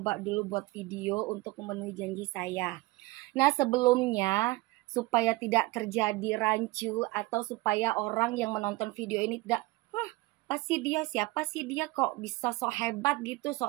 dulu buat video untuk memenuhi janji saya. Nah, sebelumnya supaya tidak terjadi rancu atau supaya orang yang menonton video ini tidak, siapa sih dia kok bisa sok hebat gitu,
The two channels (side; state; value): left; quieter; 21.3 dB